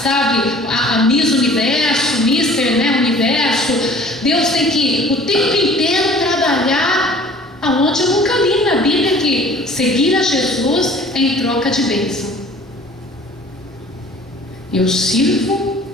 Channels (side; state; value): both; normal; correlation 0.49